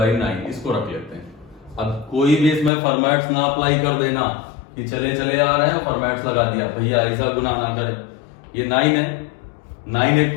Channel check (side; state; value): right; drops out; at 2.7 s